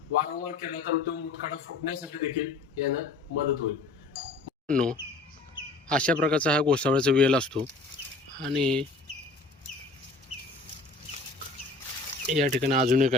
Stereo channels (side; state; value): right; quieter; 3.4 dB